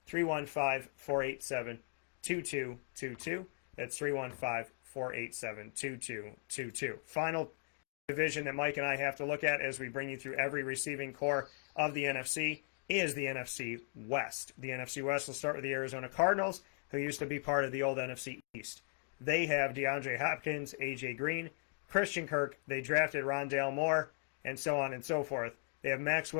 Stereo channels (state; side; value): silent; right; 53 dB below the other